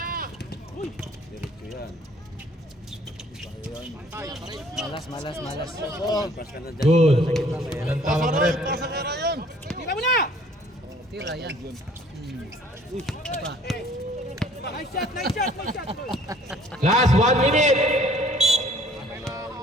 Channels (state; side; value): normal; both; correlation 0.56